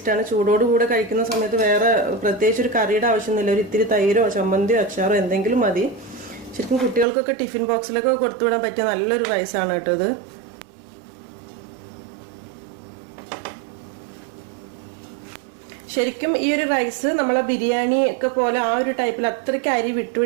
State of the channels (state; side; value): drops out; left; at 7.1 s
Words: ചൂടോടുകൂടെ കഴിക്കുന്ന സമയത്ത് വേറെ പ്രത്യേകിച്ച് ഒരു കറിയുടെ ആവശ്യമൊന്നുമില്ല. ഒരു ഇത്തിരി തൈരോ ചമ്മന്തിയോ അച്ചാറോ എന്തെങ്കിലും മതി. ശരിക്കും കുട്ടികൾക്കൊക്കെ ടിഫിൻ ബോക്സിലൊക്കെ കൊടുത്തുവിടാൻ പറ്റിയ നല്ലൊരു റൈസാണ് കേട്ടോ ഇത്. ശരിക്കും ഈ ഒരു റൈസ് നമ്മളെ ബിരിയാണി ഒക്കെ പോലെ ആ ഒരു ടൈപ്പിൽ അത്രയ്ക്ക് അരി